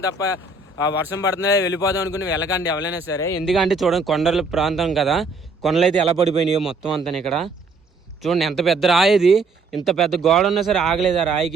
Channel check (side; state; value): left; quieter; 3.8 dB